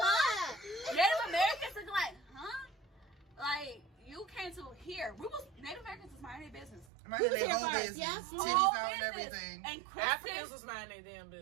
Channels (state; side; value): drops out; left; at 6.9 s